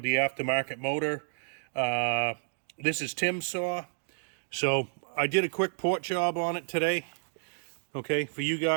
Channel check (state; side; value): silent; left; digital silence